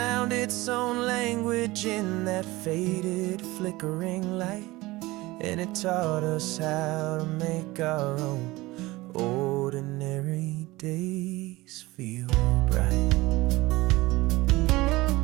its own language in that faded, flickering light, and it taught us how to make our own ordinary days feel bright.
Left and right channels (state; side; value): quieter; left; 20.2 dB